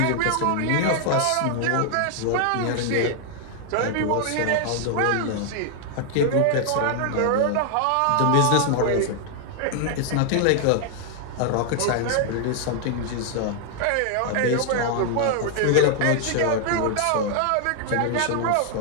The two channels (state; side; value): different; both; correlation 0.00